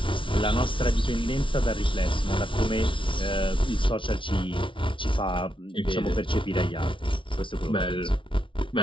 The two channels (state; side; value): late; right; 0.25 ms